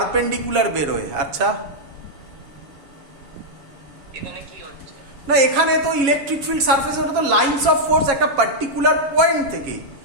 বেরোয়। আচ্ছা, এখানে কি হচ্ছে? না এখানে তো ইলেকট্রিক ফিল্ড সারফেসে, ওটা তো লাইনস অফ ফোর্স একটা পার্টিকুলার পয়েন্ট থেকে,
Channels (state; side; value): late; left; 7.3 ms